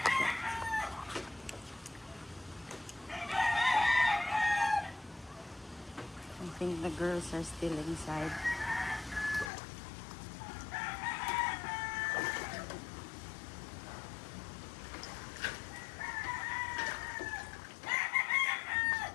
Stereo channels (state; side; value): drops out; right; at 9.5 s